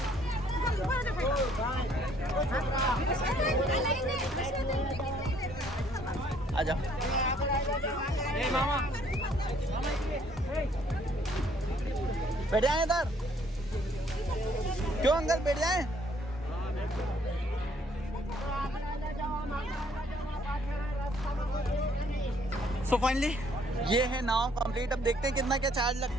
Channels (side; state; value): both; normal; correlation 0.63